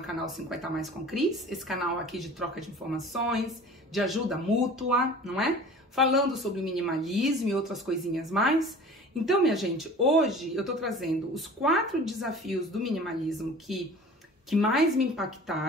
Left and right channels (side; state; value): both; normal; correlation 0.42